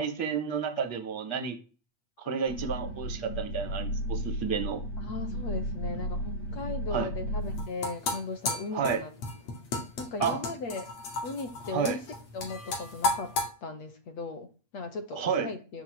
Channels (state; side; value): late; right; 8.4 ms